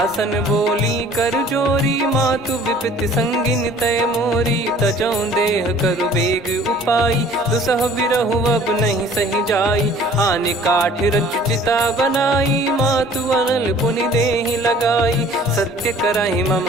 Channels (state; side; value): normal; both; correlation 0.51